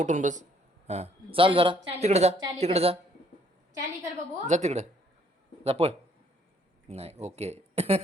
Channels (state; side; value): normal; both; correlation 0.65